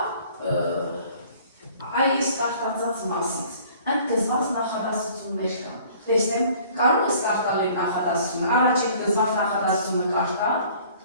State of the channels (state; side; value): inverted; both; correlation -0.53